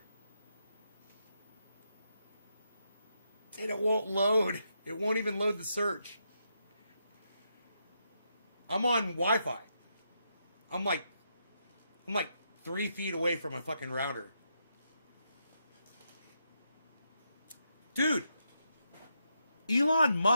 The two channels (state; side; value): inverted; both; correlation -0.81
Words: And it won't load. It won't even load the search. I'm on Wi-Fi. I'm like 3 feet away from a fucking router. Dude, Elon